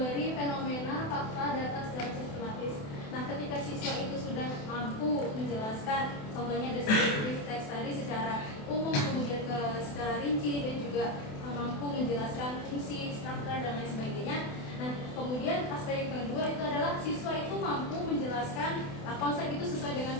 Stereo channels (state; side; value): late; right; 28 ms